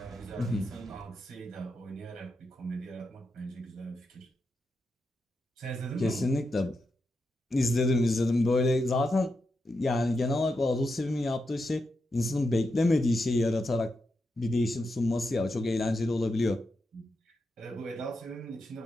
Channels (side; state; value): both; normal; correlation 0.86